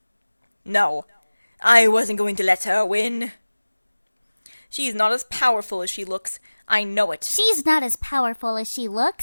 No, I wasn't going to let her win. She's not as powerful as she looks. I know it. She's not as powerful as she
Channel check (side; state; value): both; inverted; correlation -1.00